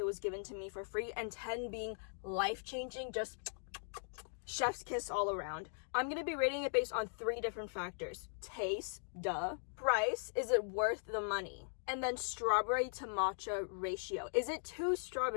was given to me for free, and 10 being life-changing, just chef's kiss all around. I'm going to be rating it based on 3 different factors. Taste, duh. Price, is it worth the money? And then strawberry to matcha ratio. Is it too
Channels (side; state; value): right; silent; digital silence